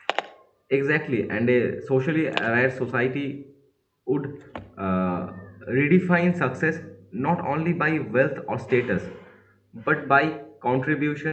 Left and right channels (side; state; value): both; identical; correlation 1.00